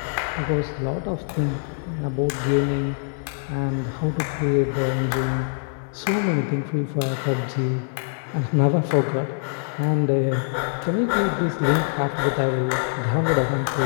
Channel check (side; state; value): right; silent; digital silence